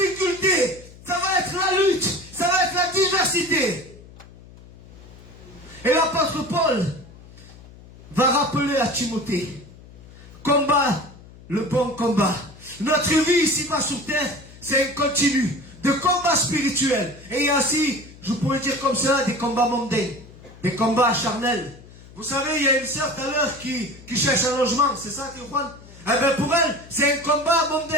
ça va être la lutte, ça va être la diversité. Et l'apôtre Paul va rappeler à Timothée, combat le bon combat. Notre vie ici-bas sur terre, c'est un continu de combat spirituel. Et il y a aussi, je pourrais dire comme ça, des combats mondains, des combats charnels. Vous savez, il y a une sœur tout à l'heure qui cherche un logement, c'est ça, Théophane? Eh bien pour elle, c'est un combat mondain,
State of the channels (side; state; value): left; noise; hum, 20 dB below the sound